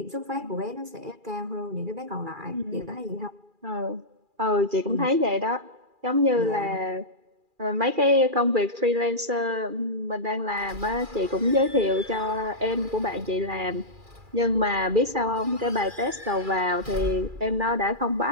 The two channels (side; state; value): left; late; 2.4 ms